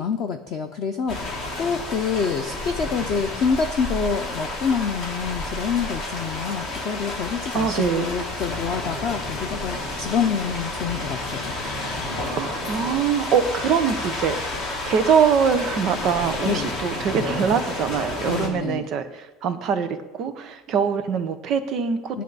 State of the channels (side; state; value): both; normal; correlation 0.40